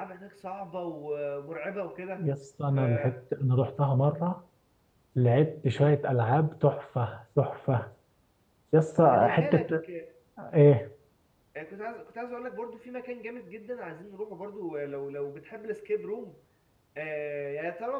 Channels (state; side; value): identical; both; correlation 1.00